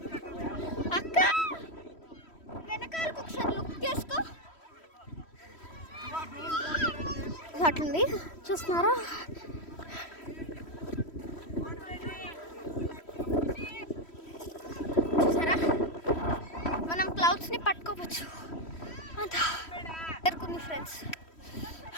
అక్క, వెనకాలకు ఒకసారి లుక్ చేసుకో. అట్లుంది చూస్తున్నారా. చూసారా, మనం క్లౌడ్స్ని పట్టుకోవచ్చు అంత ఎరుకుంది ఫ్రెండ్స్.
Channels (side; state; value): right; late; 3.1 ms